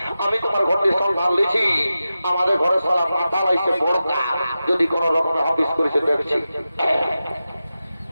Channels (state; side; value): inverted; both; correlation -0.93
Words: আমি তোমার ঘরটি সন্ধান লিছি, আমাদের ঘরে সালা মাতাল আইসে বড়কা, যদি কোন রকম হাফিস করেছে দেখছি।